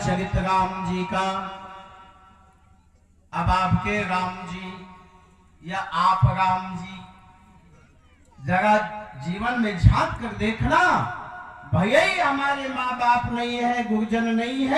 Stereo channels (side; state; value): both; identical; correlation 1.00